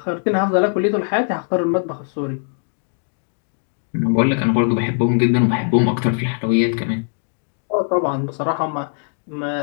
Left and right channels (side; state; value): right; silent; 65 dB below the other